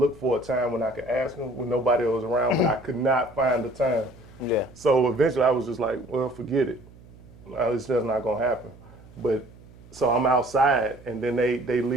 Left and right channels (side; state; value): right; noise; hum, 22 dB below the sound